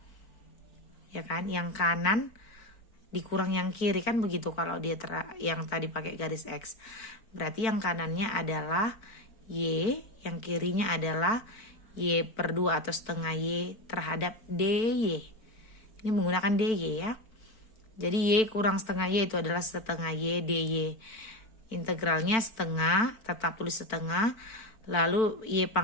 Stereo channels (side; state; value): right; late; 4.5 ms